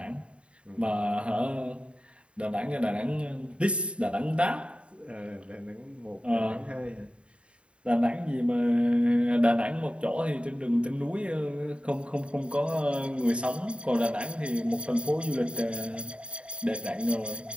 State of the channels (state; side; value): late; left; 0.058 ms